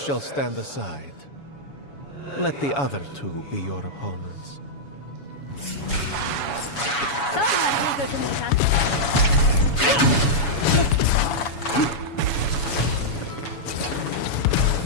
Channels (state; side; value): late; right; 7.1 ms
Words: stand aside. Let the other two be your opponents.